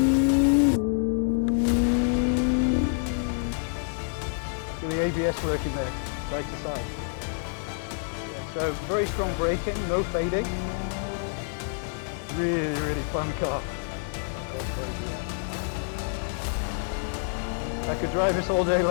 See the ABS working there, side to side. So very strong braking, no fading. Really, really fun car. I could drive this all day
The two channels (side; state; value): right; silent; 57 dB below the other